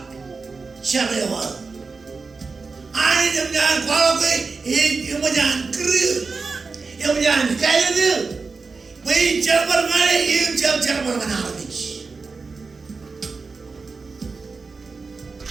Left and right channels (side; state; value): left; quieter; 4.4 dB